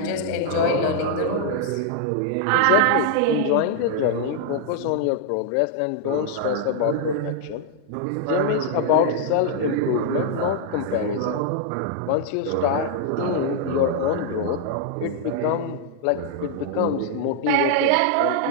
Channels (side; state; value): both; different; correlation -0.01